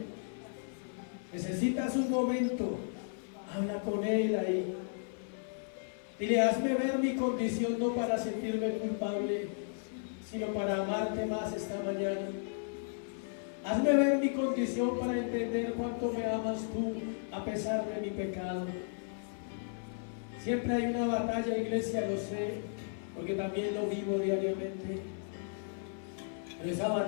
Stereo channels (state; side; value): silent; right; 55 dB below the other